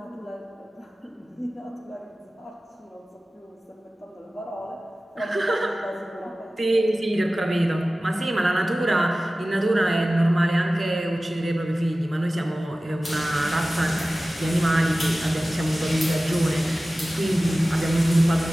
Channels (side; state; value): both; normal; correlation 0.96